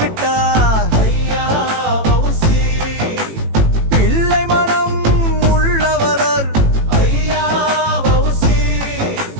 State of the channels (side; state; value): left; late; 18 ms